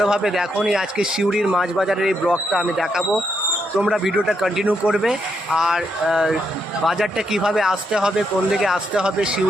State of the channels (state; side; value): normal; both; correlation 0.79